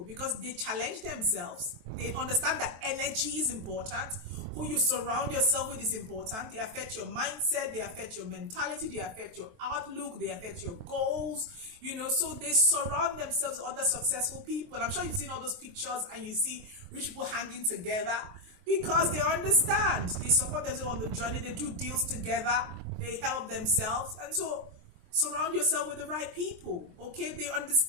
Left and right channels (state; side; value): late; left; 23 ms